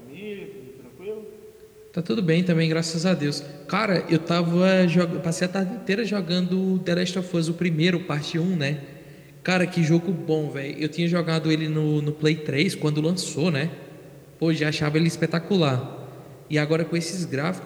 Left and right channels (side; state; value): both; identical; correlation 1.00